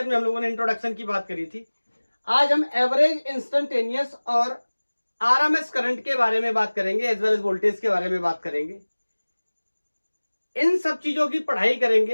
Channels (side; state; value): both; inverted; correlation -1.00